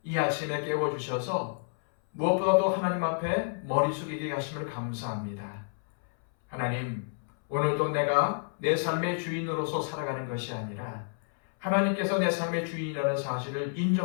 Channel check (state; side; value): silent; right; 58 dB below the other